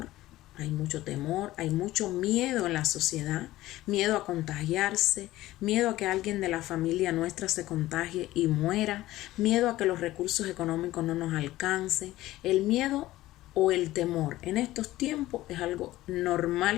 hay mucho temor, hay mucho miedo en la sociedad, miedo a contagiarse, miedo a que alguien de la familia nuestra se contagie y muera, miedo a que los recursos económicos no nos alcancen. El miedo o el temor en estos tiempos es algo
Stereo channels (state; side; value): quieter; right; 16.3 dB